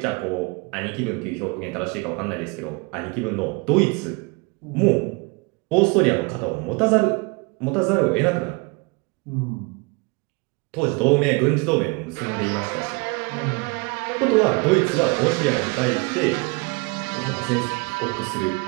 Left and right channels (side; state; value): left; quieter; 29.1 dB